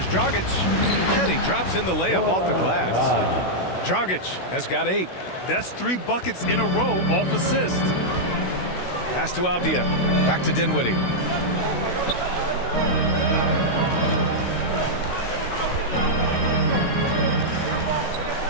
Dragic. And he drops in the layup off the glass. Dragic has got 8. That's 3 buckets in a row off assist. Pass to Avdia. Back to Dinwiddie.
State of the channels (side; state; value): right; late; 16 ms